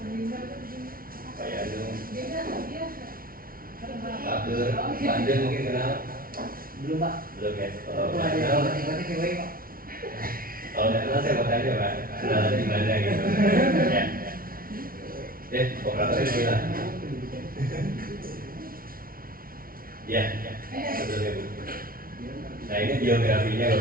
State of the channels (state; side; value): late; left; 0.43 ms